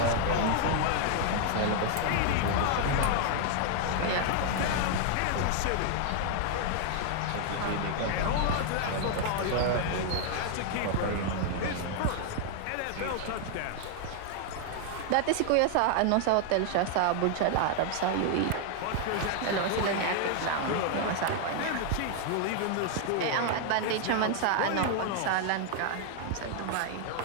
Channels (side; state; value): both; different; correlation 0.00